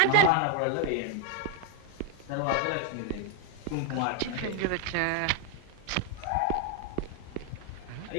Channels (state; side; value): different; both; correlation 0.00